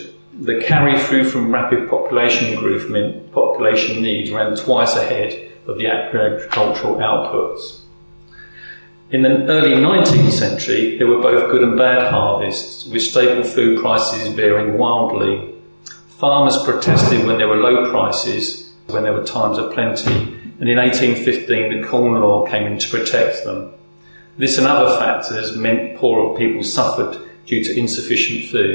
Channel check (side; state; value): both; inverted; correlation -1.00